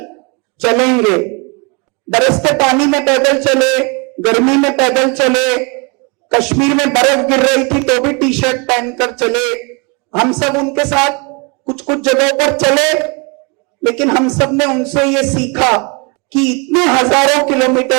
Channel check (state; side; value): quieter; left; 31.5 dB